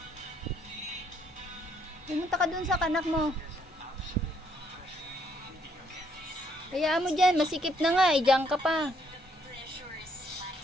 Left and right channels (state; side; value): normal; both; correlation 0.69